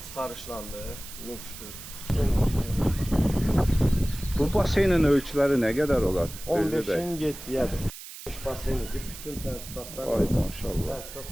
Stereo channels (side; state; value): right; noise; hiss, 13 dB below the sound